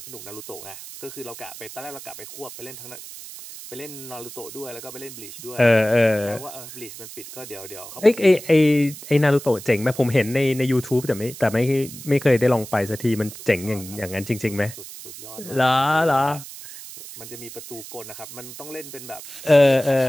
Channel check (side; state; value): right; noise; hiss, 14 dB below the sound